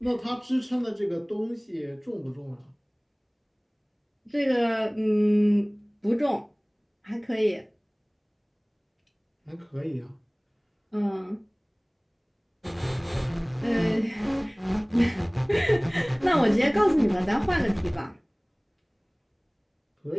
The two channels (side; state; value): both; identical; correlation 1.00